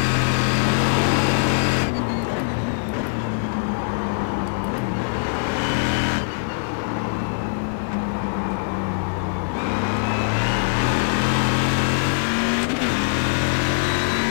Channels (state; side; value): silent; right; digital silence